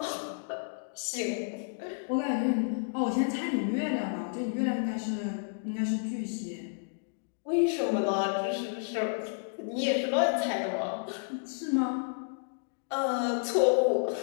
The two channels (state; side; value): silent; right; digital silence